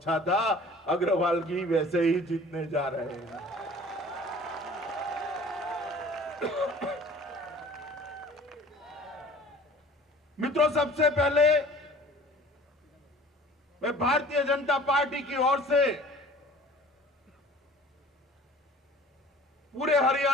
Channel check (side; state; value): both; normal; correlation 0.47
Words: था। अग्रवाल जी वैसे ही जीतने जा रहे हैं। मित्रों, सबसे पहले मैं भारतीय जनता पार्टी की ओर से पूरे